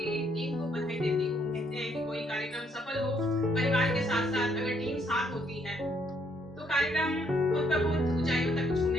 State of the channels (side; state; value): both; normal; correlation 0.70